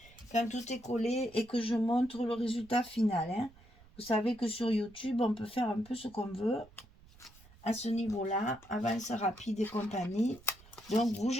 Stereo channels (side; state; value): right; noise; rumble, 24 dB below the sound